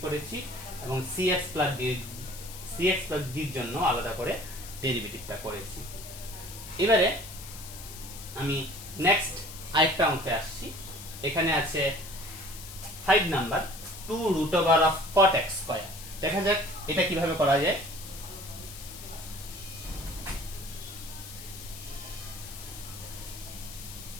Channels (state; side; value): noise; left; hiss, 13 dB below the sound